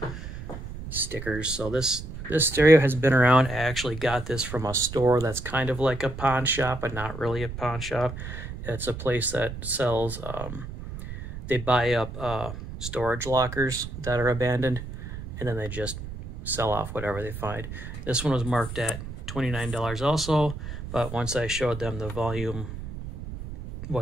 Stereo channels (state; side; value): noise; right; rumble, 9 dB below the sound